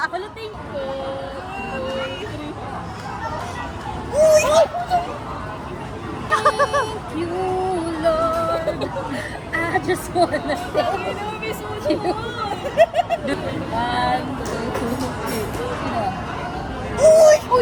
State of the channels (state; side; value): identical; both; correlation 1.00